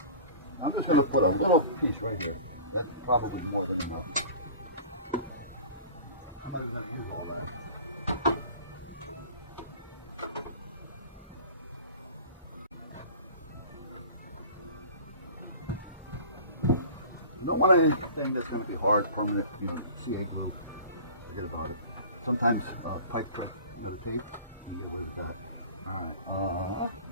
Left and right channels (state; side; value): inverted; both; correlation -0.41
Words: I'm just going to put a little piece right here. That's probably more than enough. I'm going to use it. You don't want anything that's going to be hard, permeate, CA glue. Forget about it. Sometimes pipe print, tape, you can away with that. Alright.